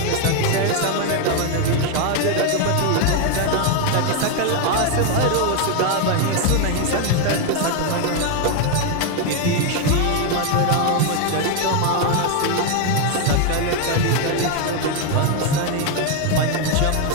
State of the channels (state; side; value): different; both; correlation 0.01